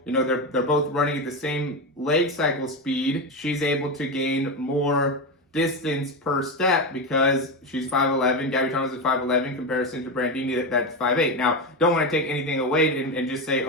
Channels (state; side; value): normal; both; correlation 0.15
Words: they're both running at the same leg cycle speed, she's able to gain more distance per step because she's 5'11". Gabby Thomas is 5'11" in comparison to Prandini that's 5'8". Now, don't want to take anything away and just say,